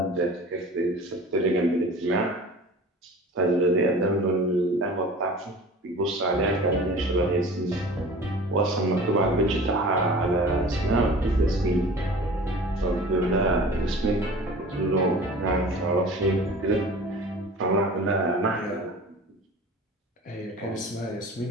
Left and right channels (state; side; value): normal; both; correlation 0.41